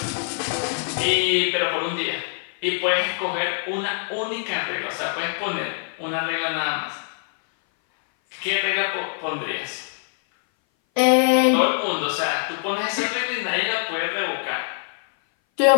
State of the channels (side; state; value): right; silent; 58 dB below the other